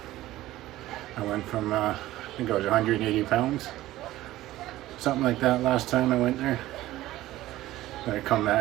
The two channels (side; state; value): left; quieter; 15.8 dB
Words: I went from, I think I was 180 pounds, something like that last time I went there. Then I come